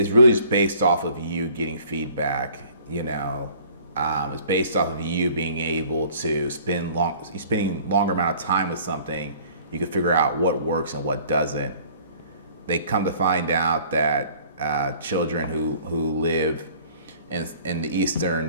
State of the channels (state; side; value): inverted; both; correlation -0.53